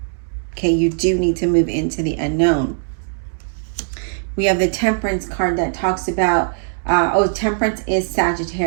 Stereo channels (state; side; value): silent; left; digital silence